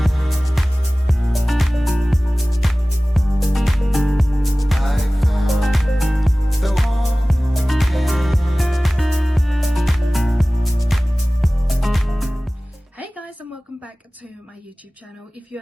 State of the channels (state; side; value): normal; both; correlation 0.98